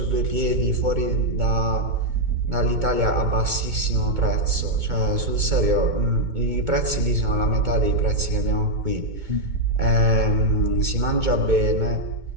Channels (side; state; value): left; late; 2.2 ms